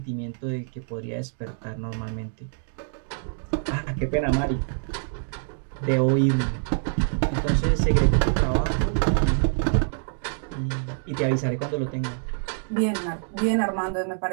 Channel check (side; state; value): left; silent; digital silence